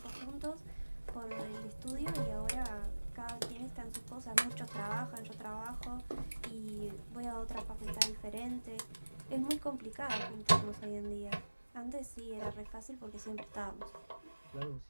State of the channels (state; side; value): inverted; both; correlation -1.00